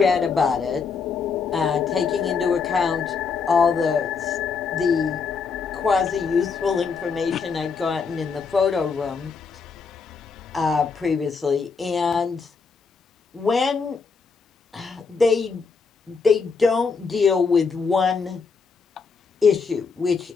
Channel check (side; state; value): right; quieter; 5.2 dB